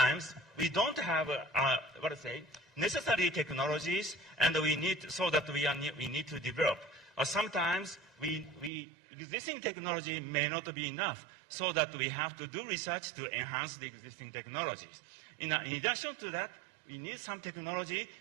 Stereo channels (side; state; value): left; drops out; at 8.7 s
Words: we don't have, necessary technologies, and we need, so that we need to develop. Or sometimes existing technology may not be enough, so that we have to do research to enhance the existing technologies. In addition to that, we need some technology